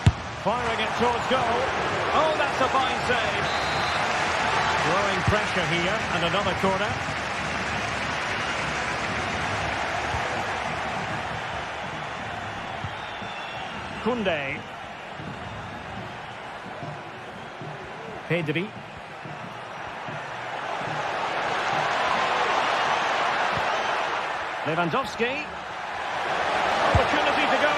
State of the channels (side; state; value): both; identical; correlation 1.00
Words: Firing it towards goal. Oh, that's a fine save. Growing pressure here, and another corner. Koundé. Pedri. Lewandowski. Opportunity to go